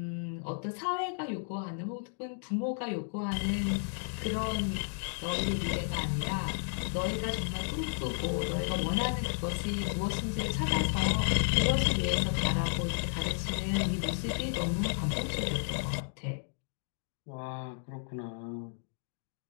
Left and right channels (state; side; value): silent; right; digital silence